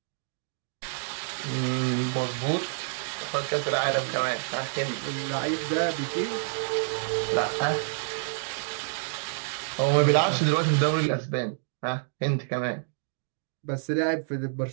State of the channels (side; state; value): left; silent; digital silence